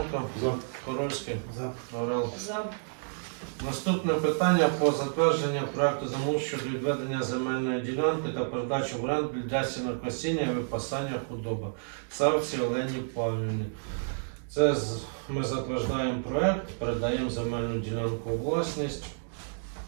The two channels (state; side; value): silent; left; digital silence